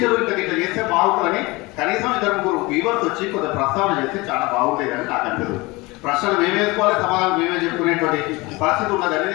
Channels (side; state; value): right; quieter; 23.2 dB